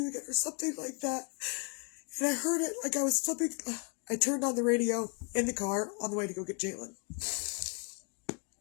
again, or something like that. And I heard it like I was flipping. I turned on the radio in the car on the way to go get Jalen.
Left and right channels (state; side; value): quieter; right; 34.4 dB